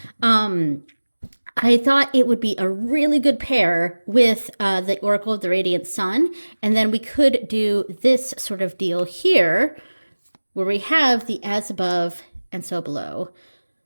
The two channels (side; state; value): both; inverted; correlation -1.00